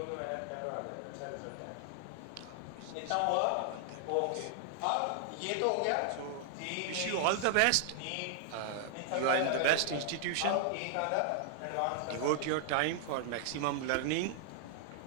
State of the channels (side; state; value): both; different; correlation 0.00